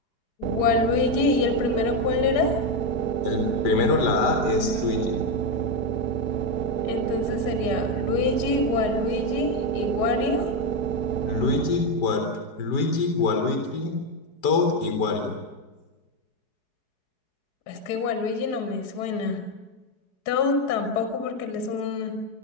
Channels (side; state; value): right; late; 4.8 ms